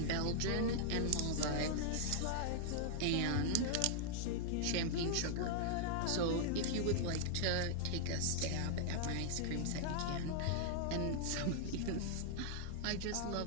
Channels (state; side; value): different; both; correlation -0.01